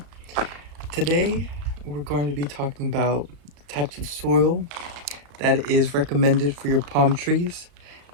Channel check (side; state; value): left; late; 34 ms